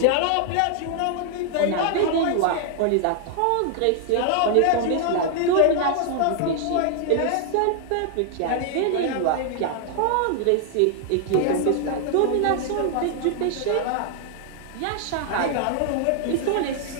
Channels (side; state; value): both; different; correlation 0.00